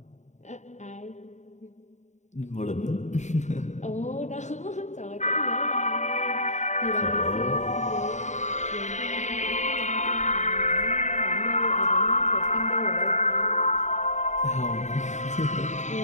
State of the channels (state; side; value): late; right; 0.34 ms